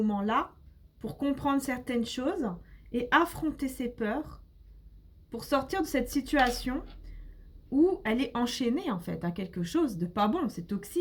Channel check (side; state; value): both; identical; correlation 1.00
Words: pour comprendre certaines choses et affronter ses peurs pour sortir de cette situation où elle est enchaînée, en fait, à quelque chose de pas bon, c'est